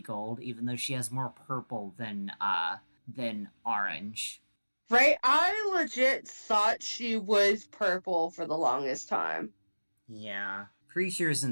gold, even though she has more purple than orange. Right? I legit thought she was purple for the longest time. Yeah. Precure's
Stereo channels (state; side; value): inverted; both; correlation -1.00